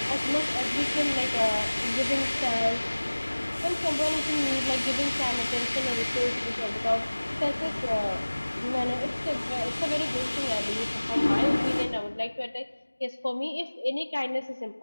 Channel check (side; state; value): both; inverted; correlation -1.00